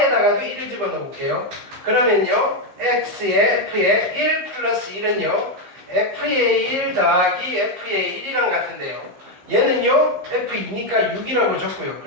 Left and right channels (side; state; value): left; late; 15 ms